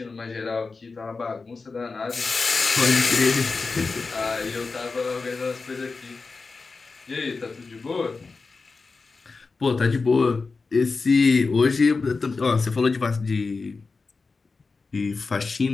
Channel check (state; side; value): quieter; right; 4.2 dB